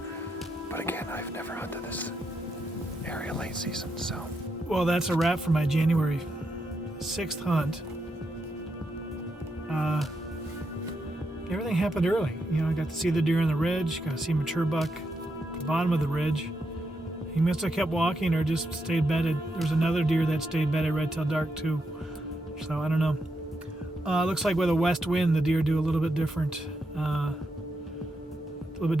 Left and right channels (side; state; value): both; normal; correlation 0.83